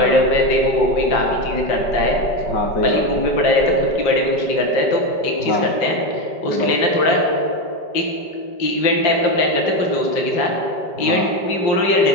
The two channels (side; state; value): right; late; 5.1 ms